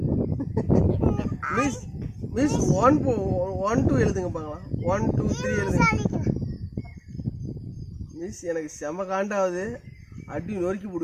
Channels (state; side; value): identical; both; correlation 1.00